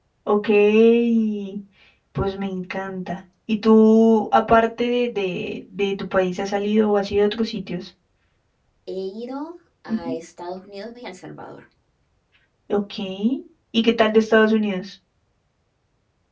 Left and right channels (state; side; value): identical; both; correlation 1.00